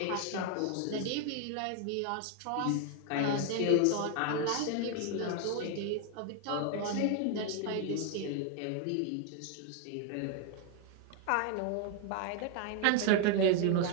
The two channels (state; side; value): different; both; correlation 0.00